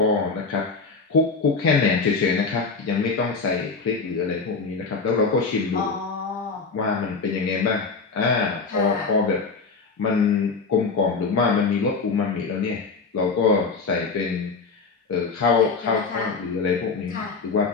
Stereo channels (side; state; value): right; quieter; 4.5 dB